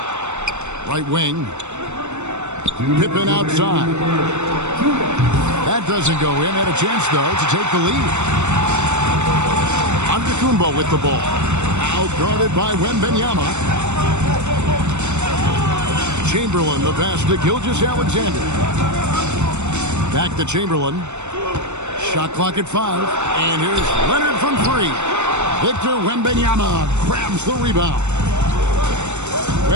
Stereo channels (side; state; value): left; late; 0.83 ms